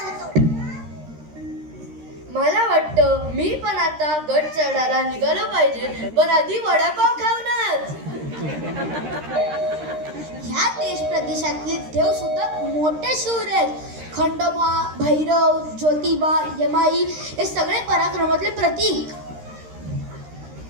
मला वाटतं मी पण आता गड चढायला निघालो पाहिजे, पण आधी वडापाव खाऊनच. ह्या देश प्रदेशातले देव सुद्धा मोठे शूर आहेत. खंडोबा, भैरव, ज्योतिबा, यमाई हे सगळे पराक्रमातले प्रतीक.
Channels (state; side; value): late; left; 13 ms